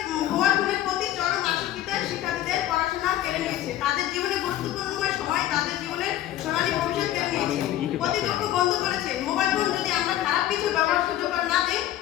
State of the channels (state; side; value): quieter; right; 13.3 dB